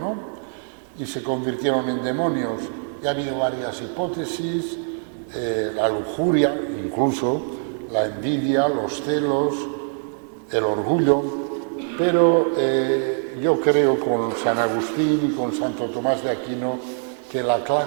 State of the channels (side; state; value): left; silent; 63 dB below the other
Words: Y se convirtieron en demonios. Y ha habido varias hipótesis, la lujuria, incluso la envidia, los celos, el orgullo, pero yo creo con San Agustín y con Santo Tomás de Aquino que la